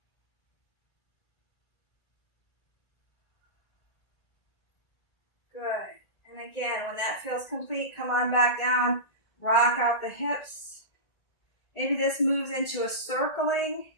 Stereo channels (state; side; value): late; right; 1.8 ms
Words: Good. And again, when that feels complete, come on back down, rock out the hips. Maybe this moves into a circling.